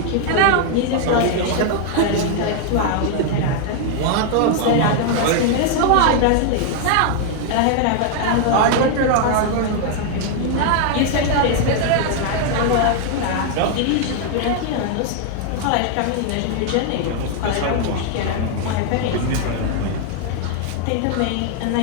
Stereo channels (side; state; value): both; different; correlation 0.00